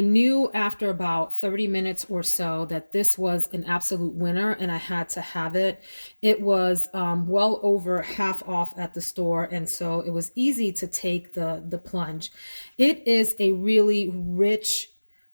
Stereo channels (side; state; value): both; inverted; correlation -1.00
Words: knew after about 30 minutes or so that this was an absolute winner, and I had to have it. It was well over half off at the store, and so it was easy to take the plunge. It is a really rich,